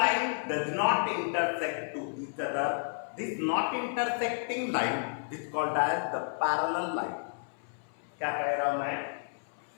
does not intersect to each other, this not intersecting line is called as the parallel line. क्या कह रहा हूं मैं?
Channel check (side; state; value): right; silent; 57 dB below the other